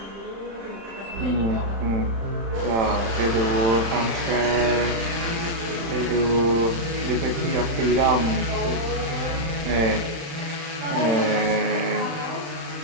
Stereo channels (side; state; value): left; late; 35 ms